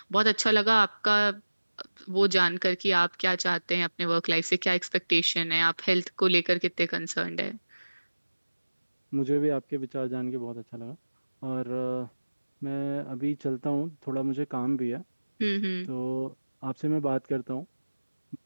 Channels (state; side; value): inverted; both; correlation -1.00